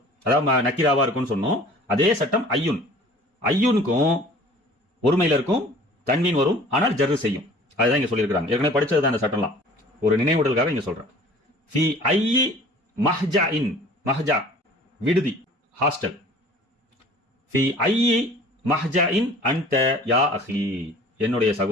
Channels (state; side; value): normal; both; correlation 0.48